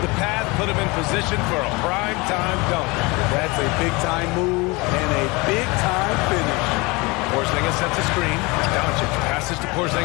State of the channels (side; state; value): right; quieter; 25.3 dB